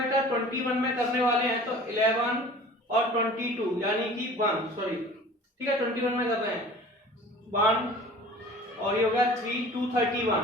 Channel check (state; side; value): normal; both; correlation 0.44